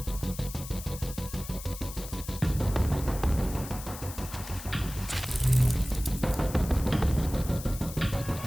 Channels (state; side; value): noise; left; hiss, 12 dB below the sound